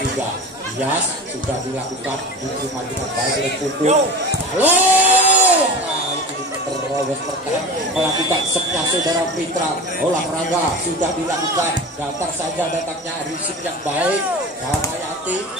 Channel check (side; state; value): both; normal; correlation 0.31